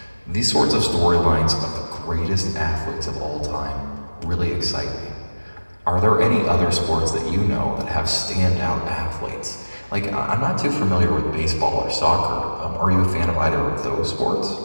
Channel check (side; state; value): both; inverted; correlation -1.00